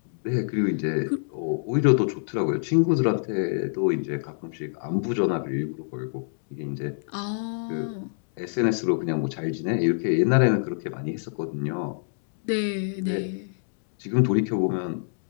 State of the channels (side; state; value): right; silent; digital silence